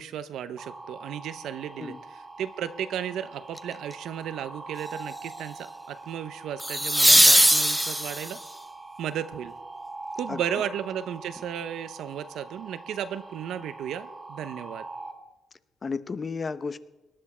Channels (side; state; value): both; normal; correlation 0.91